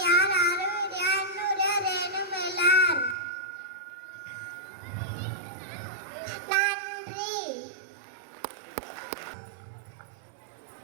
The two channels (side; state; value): left; drops out; at 3.2 s